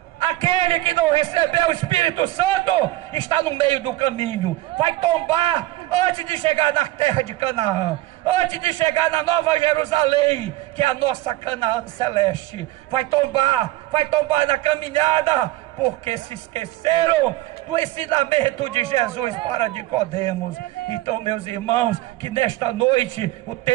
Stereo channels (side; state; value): left; quieter; 17.1 dB